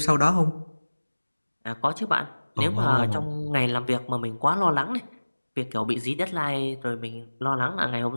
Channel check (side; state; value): both; inverted; correlation -1.00